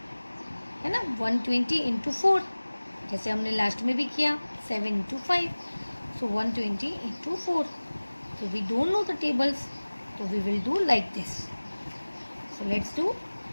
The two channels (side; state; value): both; inverted; correlation -1.00